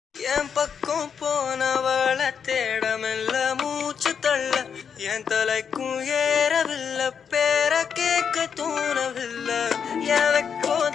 என் பக்கம் போனவள தேடமெல்ல மூச்சு தள்ள என் தலைக்கும் ஏறவில்லை பேர கேட்க தோணவில்லை எனக்கோ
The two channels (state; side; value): quieter; right; 7.1 dB